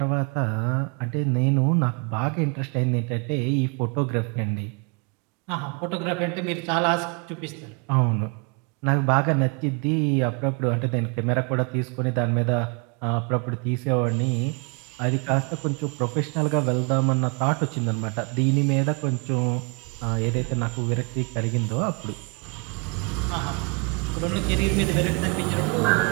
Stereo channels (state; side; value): quieter; left; 33.9 dB